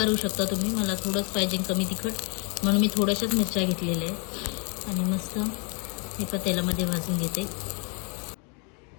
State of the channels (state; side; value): quieter; right; 35.1 dB